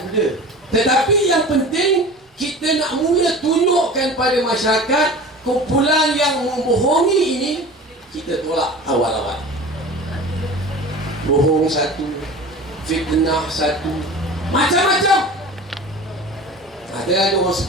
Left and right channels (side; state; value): both; normal; correlation 0.37